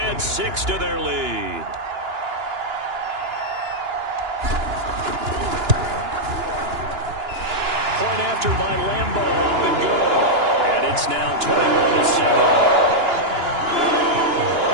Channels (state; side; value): late; left; 2.9 ms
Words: 6 to their lead. Point after by Lambeau, up and good. And it's now 21-7.